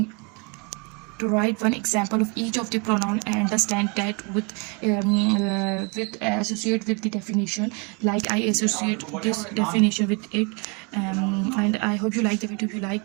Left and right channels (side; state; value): left; quieter; 31.4 dB